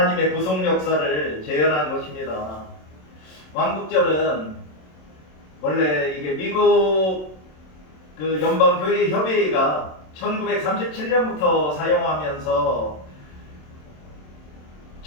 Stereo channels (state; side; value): late; right; 27 ms